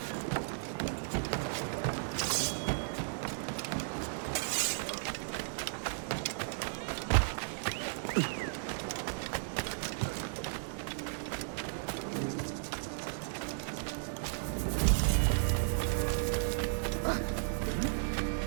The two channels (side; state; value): left; silent; digital silence